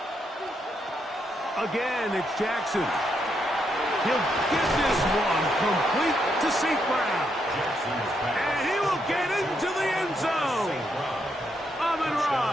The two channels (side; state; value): both; normal; correlation 0.78